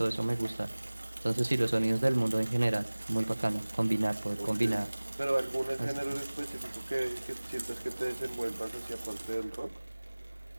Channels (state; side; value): inverted; both; correlation -1.00